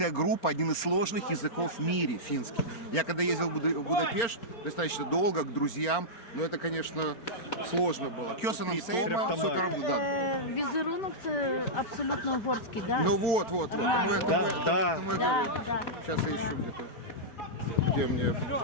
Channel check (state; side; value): late; right; 4.4 ms